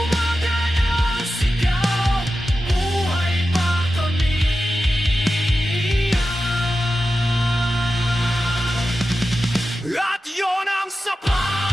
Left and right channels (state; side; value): normal; both; correlation 0.92